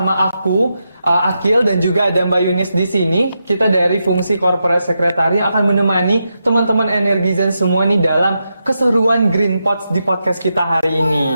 aku, Akil, dan juga ada Mbak Yunis di sini. Kita dari fungsi corporate secretary akan menemani teman-teman Energizen semua nih dalam keseruan Green Pods di podcast kita hari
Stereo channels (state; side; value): inverted; both; correlation -0.86